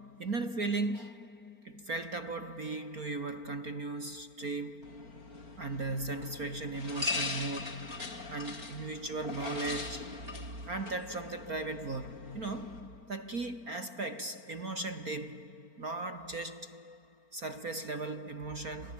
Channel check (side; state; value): left; late; 4.4 ms